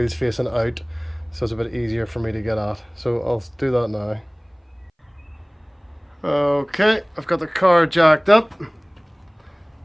facing out, so it's a bit easier for me to get at. So I'll do that now. Okay, I've got the car jacked up,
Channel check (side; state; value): both; identical; correlation 1.00